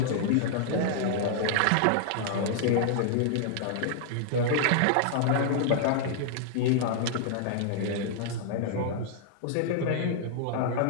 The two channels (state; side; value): different; both; correlation -0.01